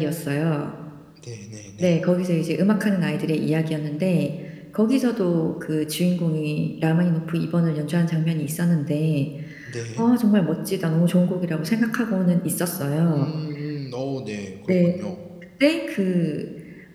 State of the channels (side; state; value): both; identical; correlation 1.00